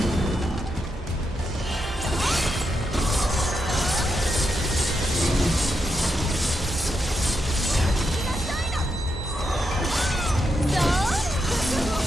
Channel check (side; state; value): both; normal; correlation 0.84